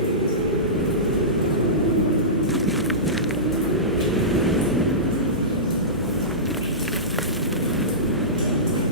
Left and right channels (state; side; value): normal; both; correlation -0.20